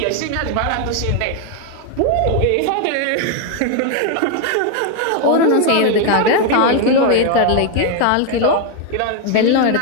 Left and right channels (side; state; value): both; different; correlation 0.01